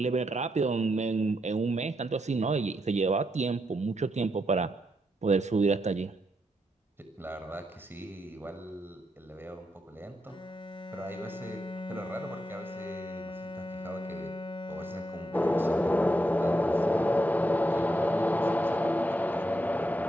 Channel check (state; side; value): normal; both; correlation 0.81